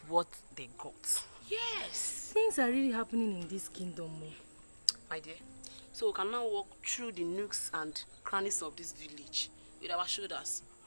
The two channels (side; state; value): both; inverted; correlation -1.00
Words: what they got. Yes. Things are really happening in this kingdom. My dear, so we can now walk through the nooks and crannies of this village with our shoulders.